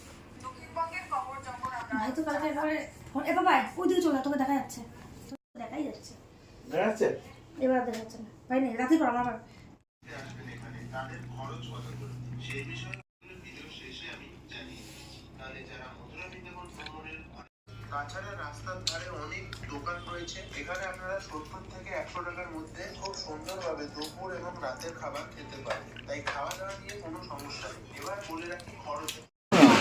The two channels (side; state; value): both; identical; correlation 1.00